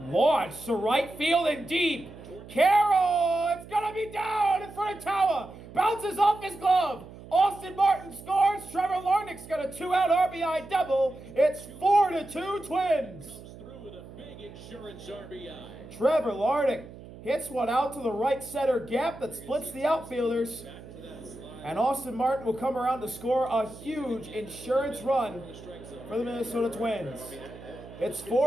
to right field and deep. Carroll, it's going to be down in front of Tower. Bounces off his glove. Austin Martin scores. Trevor Larnach's got a 2-out RBI double. It's 4-2 Twins. Comes through with a big insurance RBI. Trevor Larnach hits one out to the right center gap that splits the outfielders. Back to that slider. And Austin Martin will come around to score a huge insurance run The strike zone. for the Minnesota Twins. It's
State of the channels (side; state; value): right; noise; hum, 17 dB below the sound